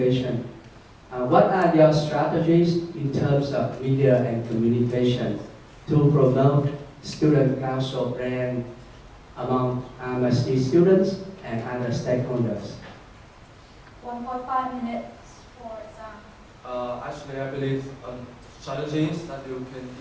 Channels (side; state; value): both; identical; correlation 1.00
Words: What are your strategies in terms of media and communication to promote student council brand among RMIT students and other stakeholders? 1.5 minutes for exam. Actually, I believe strategies that you can